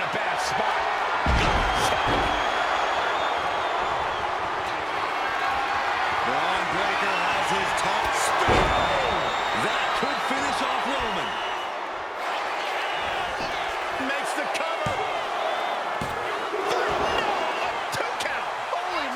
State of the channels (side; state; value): both; identical; correlation 1.00